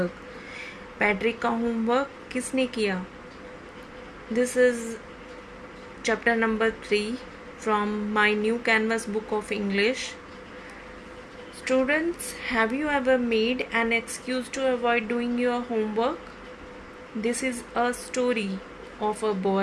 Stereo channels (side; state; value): both; identical; correlation 1.00